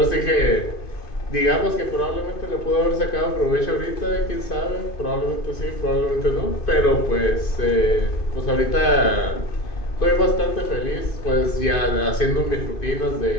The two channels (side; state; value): right; late; 2.5 ms